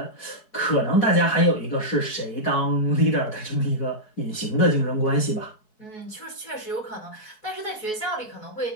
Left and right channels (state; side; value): late; right; 4.7 ms